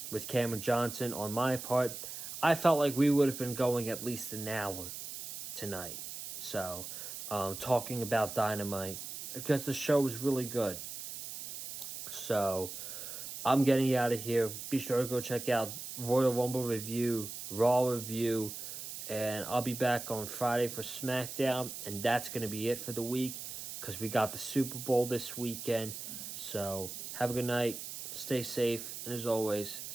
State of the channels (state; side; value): noise; right; hiss, 8 dB below the sound